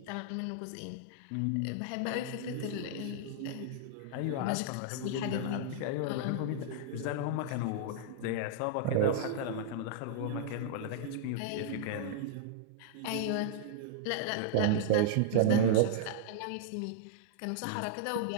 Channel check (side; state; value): both; different; correlation -0.01